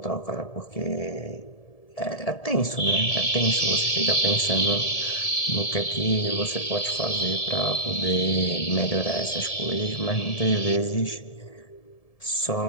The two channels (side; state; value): right; late; 1.7 ms